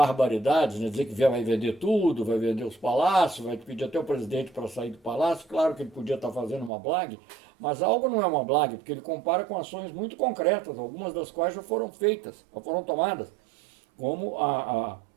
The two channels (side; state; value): left; drops out; at 6.7 s